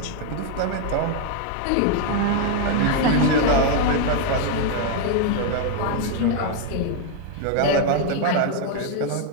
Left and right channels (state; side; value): different; both; correlation 0.01